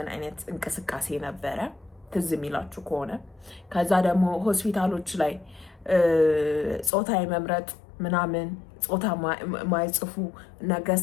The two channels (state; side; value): drops out; right; at 6.9 s